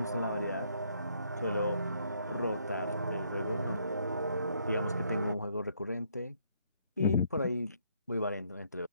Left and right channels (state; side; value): inverted; both; correlation -0.69